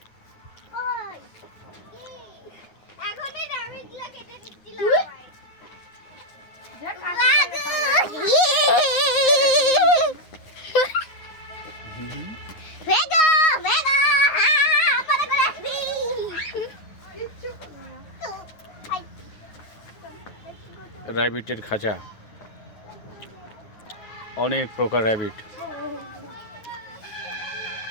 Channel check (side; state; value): right; late; 9.4 ms